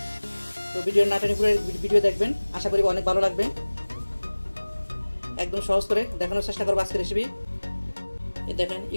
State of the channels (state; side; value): inverted; both; correlation -1.00